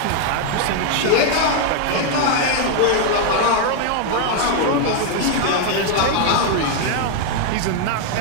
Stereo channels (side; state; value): both; different; correlation 0.00